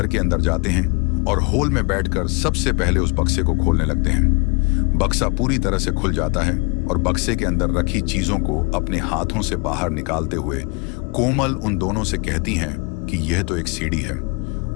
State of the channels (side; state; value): right; quieter; 31.1 dB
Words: के अंदर जाते हैं और हॉल में बैठकर सबसे पहले उस बक्से को खोलने लगते हैं। बक्सा पूरी तरह से खुल जाता है और बक्से के अंदर रखी चीजों को अपने हाथों से बाहर निकालते हुए कोमल उन दोनों से कहती हैं कि यह तो एक सीढ़ी है।